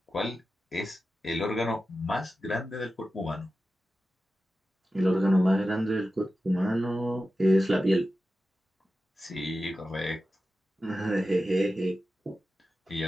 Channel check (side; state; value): both; normal; correlation 0.93